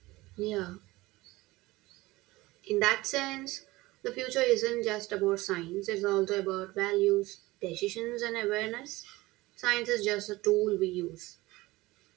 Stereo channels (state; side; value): quieter; left; 19.8 dB